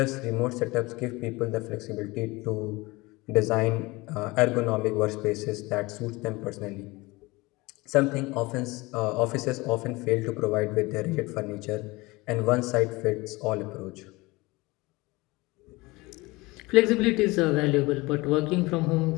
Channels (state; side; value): quieter; right; 22.6 dB